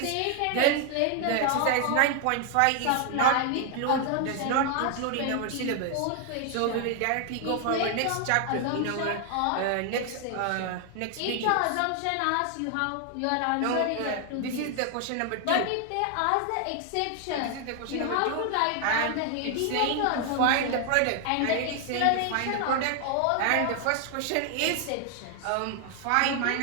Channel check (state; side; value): different; both; correlation 0.00